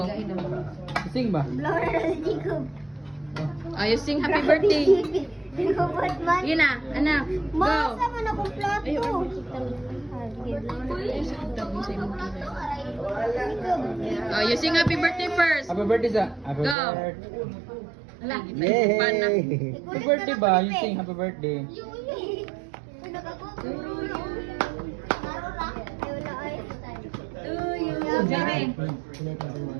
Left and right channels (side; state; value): left; drops out; at 16.8 s